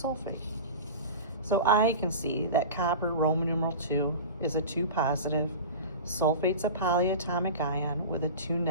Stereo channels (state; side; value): inverted; both; correlation -0.32